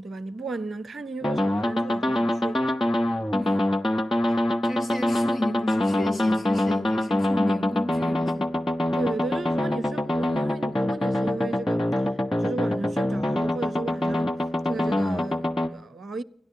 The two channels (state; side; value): normal; both; correlation 0.94